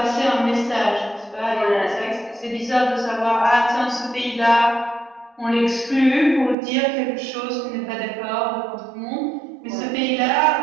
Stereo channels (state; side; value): drops out; left; at 6.6 s